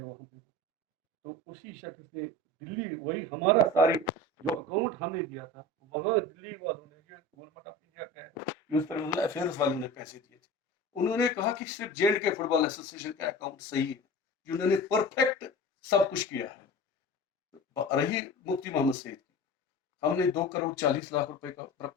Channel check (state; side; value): normal; both; correlation 0.35